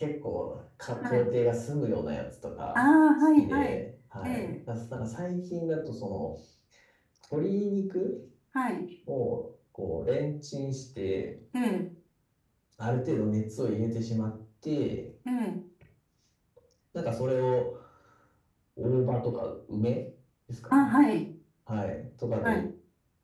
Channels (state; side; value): identical; both; correlation 1.00